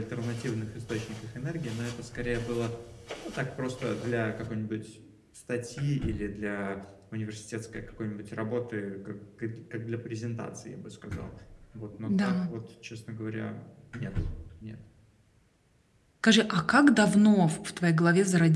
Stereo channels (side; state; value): both; identical; correlation 1.00